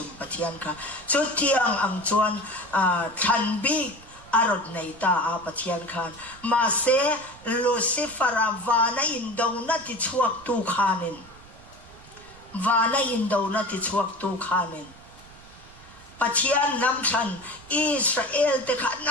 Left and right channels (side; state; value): right; noise; rumble, 22 dB below the sound